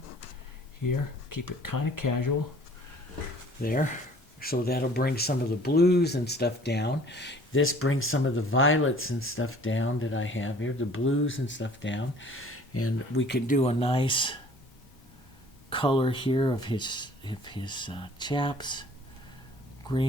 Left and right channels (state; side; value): normal; both; correlation 0.52